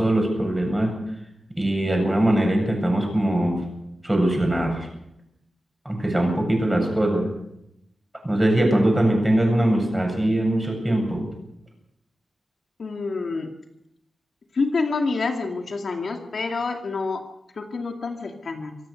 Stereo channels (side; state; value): both; normal; correlation 0.93